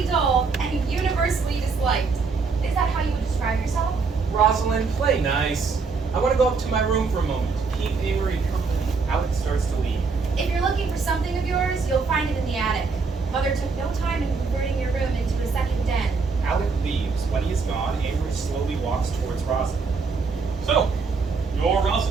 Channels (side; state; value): left; quieter; 4.7 dB